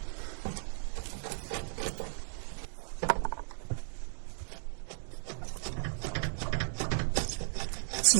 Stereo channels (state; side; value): silent; left; 54 dB below the other